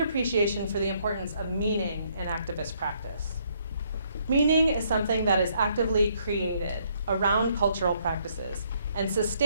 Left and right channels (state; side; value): inverted; both; correlation -0.69